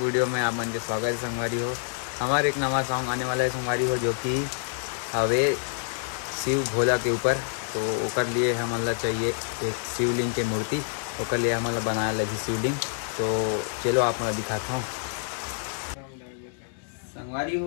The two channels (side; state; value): right; silent; digital silence